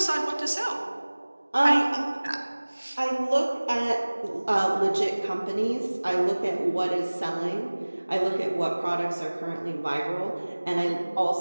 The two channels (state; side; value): inverted; both; correlation -1.00